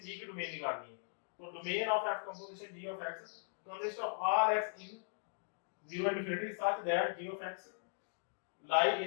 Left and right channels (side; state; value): right; silent; digital silence